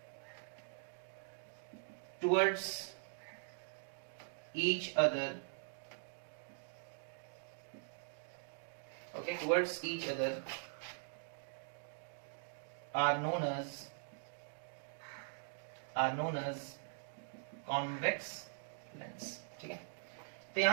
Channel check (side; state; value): left; silent; digital silence